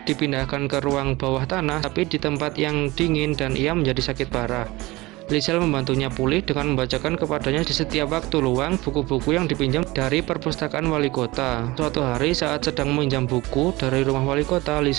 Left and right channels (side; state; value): left; quieter; 20.9 dB